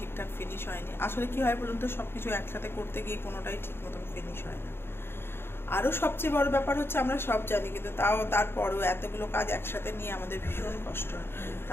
ফিনিশ হয়নি। আসলে কি হয় বলুন তো, সব কিছু একসাথে করতে গিয়ে কোনোটাই ঠিক মতন ফিনিশ হয় না। আরও সবচেয়ে বড় ব্যাপার হচ্ছে, আমরা সব জানি কিন্তু তারপরেও এতগুলো কাজ একসাথে নিয়ে আমাদের ভীষণ কষ্ট হয়।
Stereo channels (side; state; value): right; late; 0.11 ms